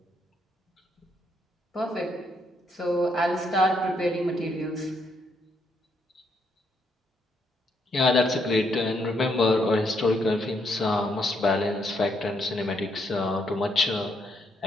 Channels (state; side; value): normal; both; correlation 0.75